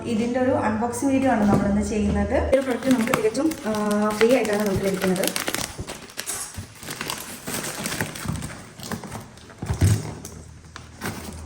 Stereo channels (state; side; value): identical; both; correlation 1.00